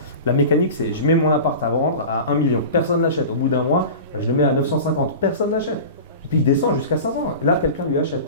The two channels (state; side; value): inverted; both; correlation -0.33